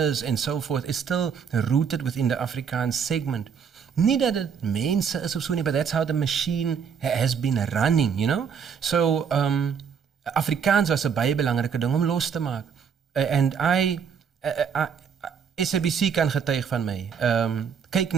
and so forth is still rooted within the Afrikaans segment. Nie dat het mense is of so nie, but that's how the machine has been running, you know? So, Afrikaans was 'n baie belangrike ding om los te maak. And SABC kan getuig van my.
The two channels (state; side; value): quieter; left; 6.9 dB